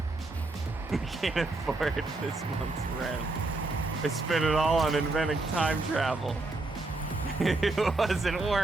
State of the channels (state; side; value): quieter; left; 3.1 dB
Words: this month's rent. I spent it all on inventing time travel. It wasn't